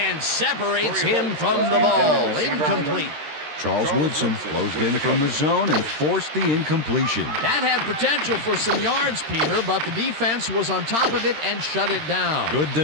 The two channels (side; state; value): left; late; 13 ms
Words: separates him from the ball. Incomplete. Charles Woodson closed in from the zone and forced the incompletion. That had potential for some yards, Peter, but the defense was on top of it and shut it down. Good